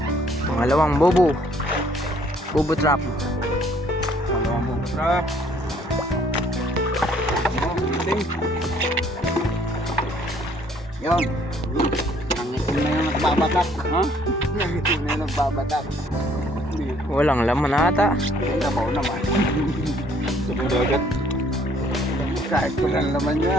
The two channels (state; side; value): normal; both; correlation 0.62